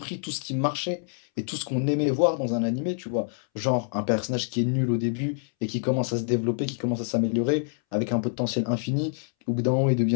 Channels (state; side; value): silent; right; 60 dB below the other